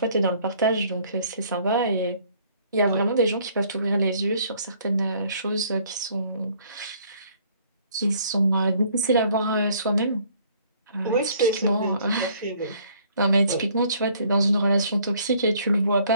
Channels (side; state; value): both; inverted; correlation -0.61